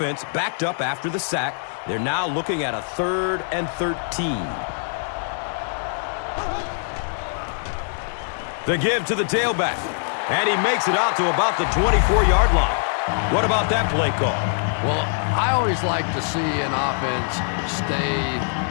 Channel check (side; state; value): right; silent; digital silence